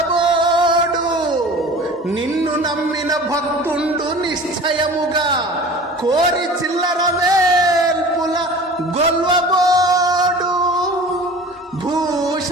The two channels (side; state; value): both; normal; correlation 0.41